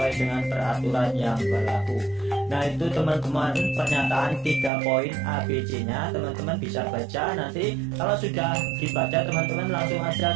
dengan peraturan yang berlaku. Nah, itu, teman-teman, pernyataan 3 poin ABC-nya. Teman-teman bisa baca. Nanti kalau sudah dibaca, teman-teman langsung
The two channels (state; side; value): drops out; left; at 4.7 s